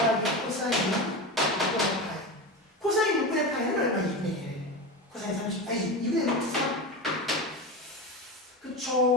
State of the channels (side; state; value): both; normal; correlation 0.23